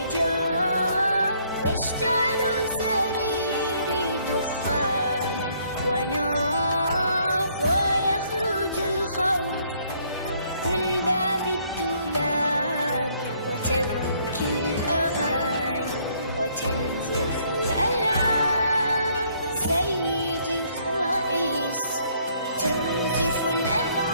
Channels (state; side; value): inverted; both; correlation -0.66